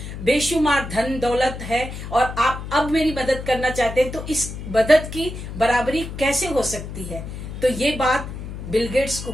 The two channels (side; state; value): left; noise; hum, 9 dB below the sound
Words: बेशुमार धन दौलत है और आप अब मेरी मदद करना चाहते हैं, तो इस मदद की बराबरी कैसे हो सकती है? तो ये बात बिल गेट्स को